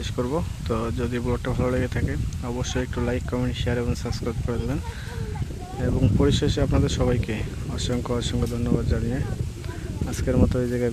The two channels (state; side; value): identical; both; correlation 1.00